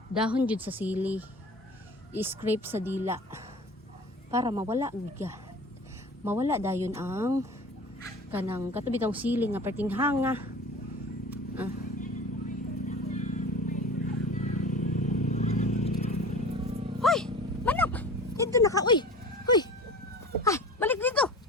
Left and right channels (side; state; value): both; normal; correlation 0.38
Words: dahon jud sa sili. I-scrape sa dila para mawala giga. Mawala dayon ang kanang katubi tong sili nga perting hanga. Hoy, manok. Dito na ka, uy. Hoy. Ay, balik dito.